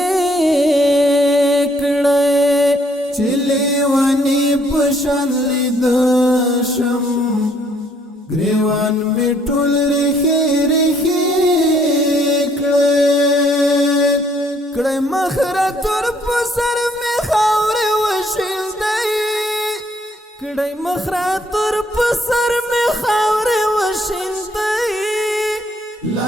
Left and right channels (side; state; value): both; normal; correlation 0.66